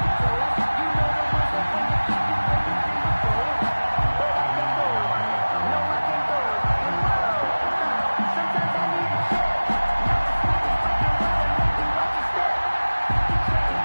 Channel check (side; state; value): both; inverted; correlation -1.00